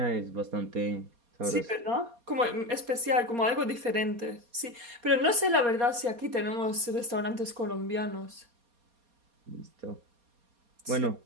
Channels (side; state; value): left; late; 4.2 ms